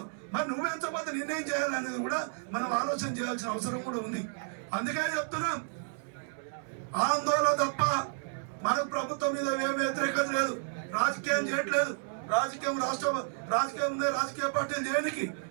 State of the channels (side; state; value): left; silent; digital silence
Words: మరి నువ్వు పెంచకపోతే నిన్నేం చేయాలనేది కూడా మనం ఆలోచన చేయాల్సిన అవసరం కూడా ఉంది. అందుకే చెప్తున్నాం, ఆందోళన తప్ప మనకు ప్రభుత్వం మీద ఏం వ్యతిరేకత లేదు, రాజకీయం చేయట్లేదు. రాజకీయం రాజకీయ పార్టీలు చేయడానికి